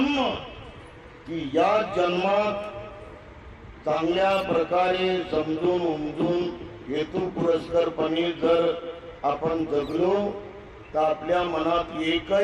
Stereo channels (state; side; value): identical; both; correlation 1.00